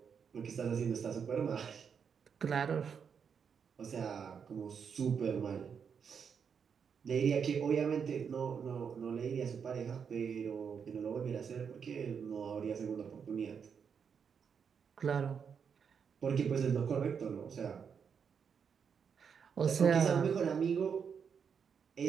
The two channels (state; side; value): quieter; left; 6.8 dB